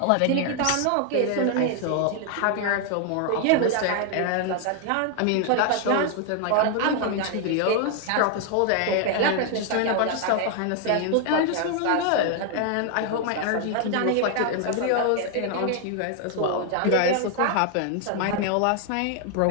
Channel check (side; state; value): both; different; correlation 0.00